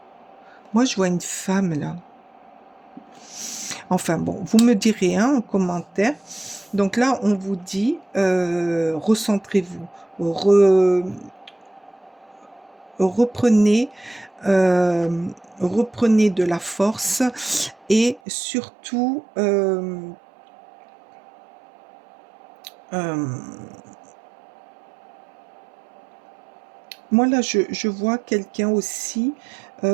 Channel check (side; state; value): left; drops out; at 18.2 s